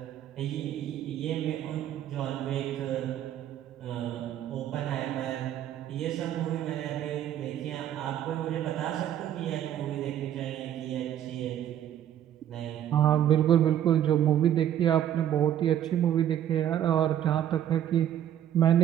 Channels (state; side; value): quieter; left; 10.8 dB